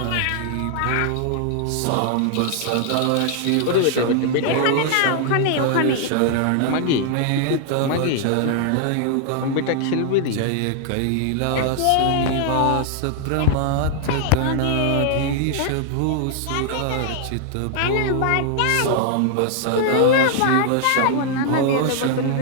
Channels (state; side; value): different; both; correlation 0.00